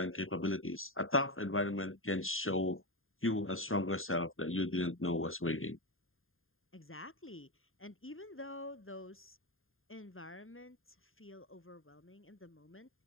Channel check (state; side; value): late; right; 0.60 ms